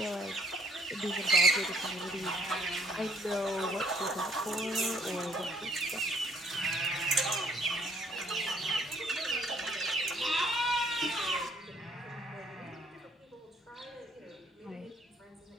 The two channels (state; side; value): normal; both; correlation 0.63